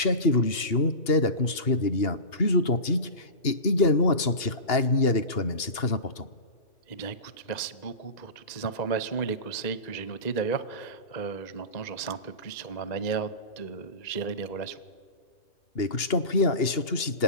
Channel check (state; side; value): late; right; 2.8 ms